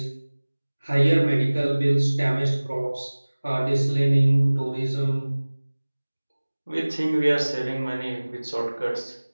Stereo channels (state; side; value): inverted; both; correlation -1.00